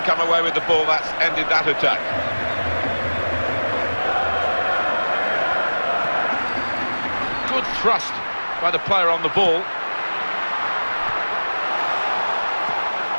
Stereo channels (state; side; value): inverted; both; correlation -1.00